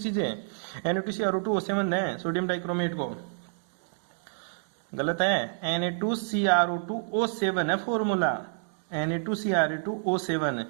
Na2CrO2O7 है सोडियम डाइक्रोमेट को। गलत है, Na2CrO2O7 है फॉर्मूला। Na2CrO2O7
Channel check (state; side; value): silent; left; digital silence